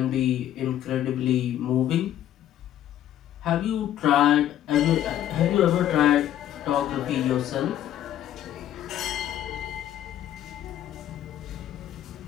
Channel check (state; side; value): quieter; right; 11.6 dB